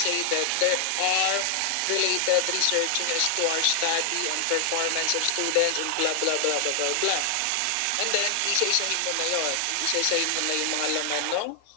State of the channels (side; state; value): both; different; correlation 0.00